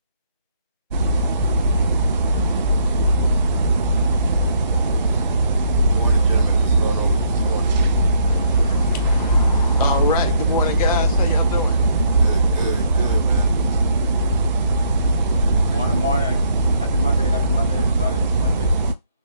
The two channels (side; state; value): both; inverted; correlation -0.69